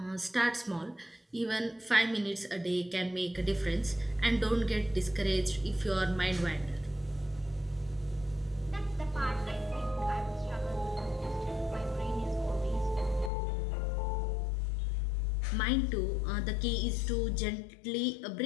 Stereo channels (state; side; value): drops out; right; at 13.3 s